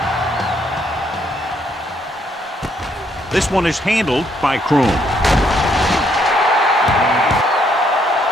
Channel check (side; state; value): both; normal; correlation 0.71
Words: This one is handled by Kroon.